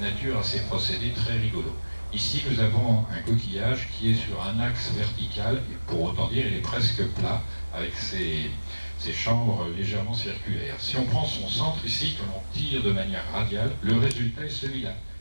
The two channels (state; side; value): inverted; both; correlation -1.00